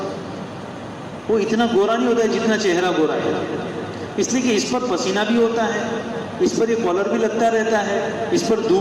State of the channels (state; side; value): identical; both; correlation 1.00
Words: وہ اتنا گورا نہیں ہوتا ہے جتنا چہرہ گورا ہے. اس لیے کہ اس پر پسینہ بھی ہوتا ہے، اس پر یہ کالر بھی لگتا رہتا ہے، اس پر